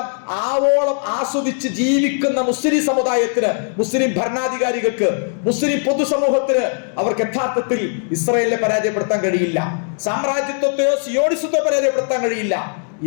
ആവോളം ആസ്വദിച്ച് ജീവിക്കുന്ന മുസ്ലിം സമുദായത്തിന്, മുസ്ലിം ഭരണാധികാരികൾക്ക്, മുസ്ലിം പൊതുസമൂഹത്തിന് അവർക്ക് യഥാർത്ഥത്തിൽ ഇസ്രായേലിനെ പരാജയപ്പെടുത്താൻ കഴിയില്ല. സാമ്രാജ്യത്വത്തെയോ സിയോണിസത്വത്തെ പരാജയപ്പെടുത്താൻ കഴിയില്ല.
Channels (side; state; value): right; silent; 67 dB below the other